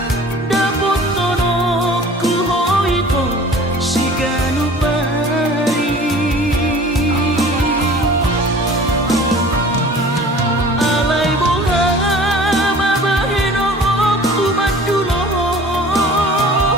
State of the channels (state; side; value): normal; both; correlation 0.45